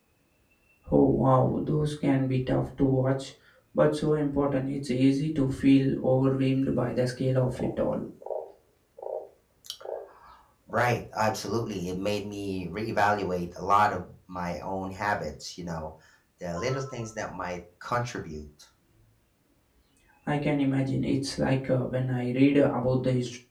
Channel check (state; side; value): identical; both; correlation 1.00